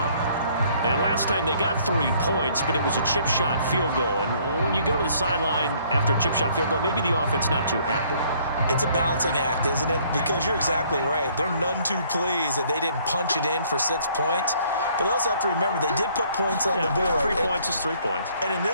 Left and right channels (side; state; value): both; inverted; correlation -0.62